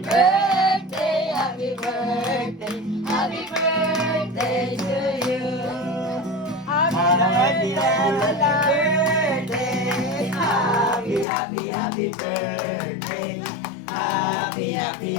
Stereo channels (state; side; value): drops out; right; at 11.2 s